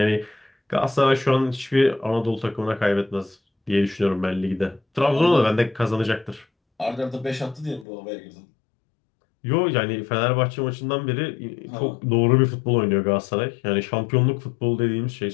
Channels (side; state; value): right; drops out; at 7.9 s